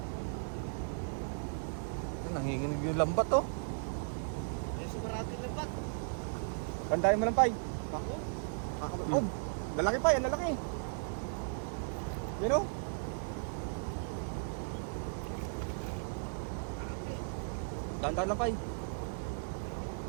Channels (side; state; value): left; silent; 54 dB below the other